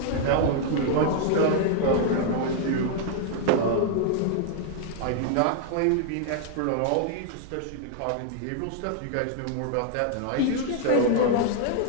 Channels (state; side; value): different; both; correlation 0.00